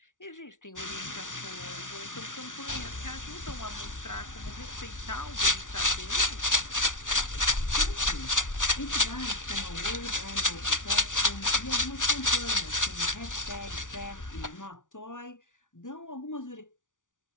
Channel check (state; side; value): late; right; 0.87 ms